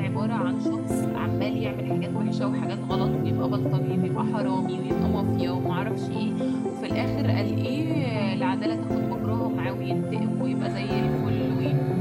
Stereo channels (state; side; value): identical; both; correlation 1.00